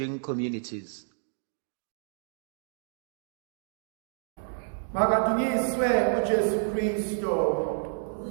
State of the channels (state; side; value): silent; left; digital silence